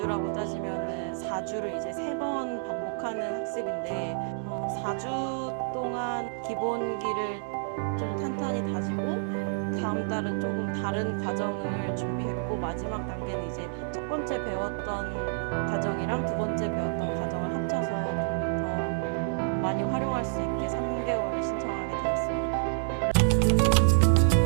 따지면은 4주를 이제 3번 반복하는 학습인데 4주 동안 기본기를 좀 탄탄히 다지고 다음 달은 조금 다른 과정을 준비했고 마지막 단계는 이제 첫 번째 배웠던 과정이랑 두 번째 배웠던 과정을 합쳐서 좀 더 많이 활용할 수 있게 3개월을 신청하게 되었습니다.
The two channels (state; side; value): silent; left; 59 dB below the other